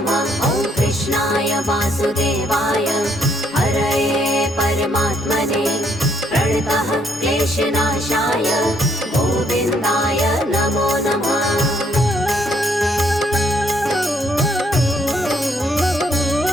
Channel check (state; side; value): normal; both; correlation 0.70